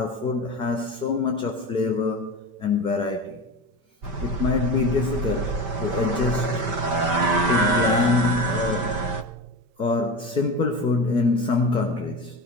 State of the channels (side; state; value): left; late; 5.1 ms